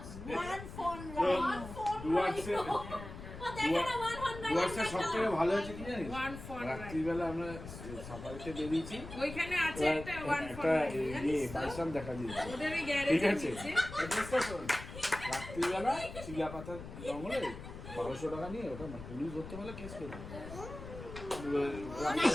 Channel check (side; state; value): left; noise; rumble, 11 dB below the sound